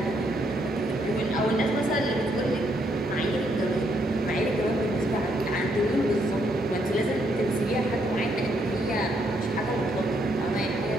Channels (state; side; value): normal; both; correlation 0.74